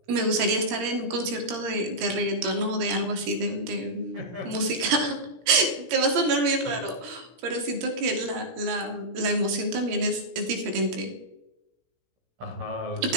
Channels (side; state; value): left; late; 17 ms